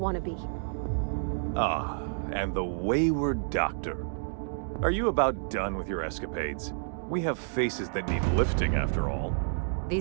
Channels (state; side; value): silent; left; digital silence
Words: to be. Ah, and the wayward doctor. Are you about done with your escapades? We have faces that need lifting, after all.